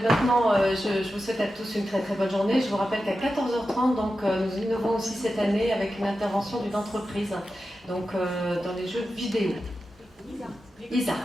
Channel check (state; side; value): normal; both; correlation 0.91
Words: maintenant, je vous souhaite à tous une très très bonne journée. Je vous rappelle qu'à 14h30, donc, nous innovons aussi cette année avec une intervention d'une entreprise, donc dans les jeux vidéo. Isart,